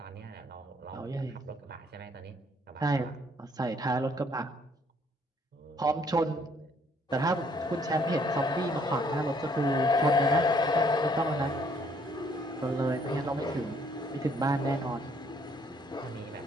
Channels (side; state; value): both; normal; correlation 0.65